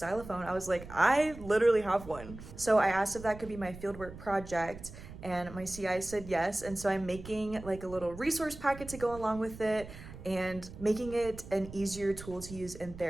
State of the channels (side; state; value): right; noise; rumble, 14 dB below the sound